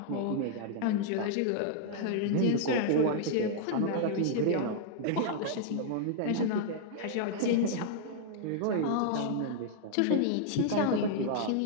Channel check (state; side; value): different; both; correlation -0.01